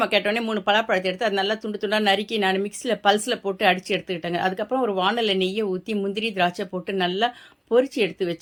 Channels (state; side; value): identical; both; correlation 1.00